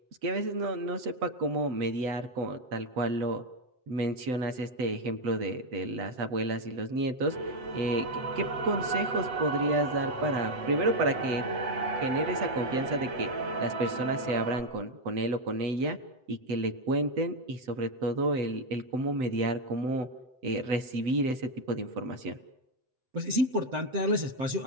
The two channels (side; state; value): left; late; 7.9 ms